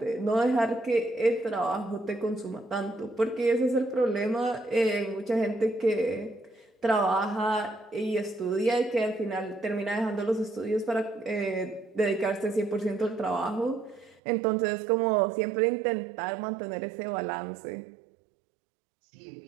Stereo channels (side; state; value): left; drops out; at 14.2 s